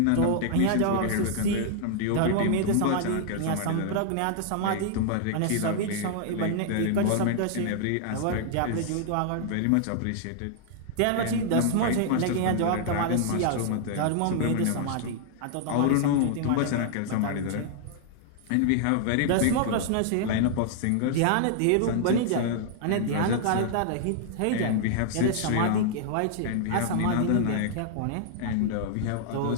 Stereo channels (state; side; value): different; both; correlation -0.01